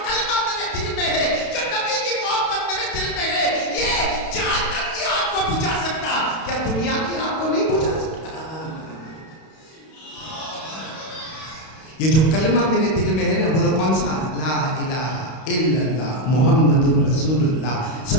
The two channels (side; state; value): right; late; 32 ms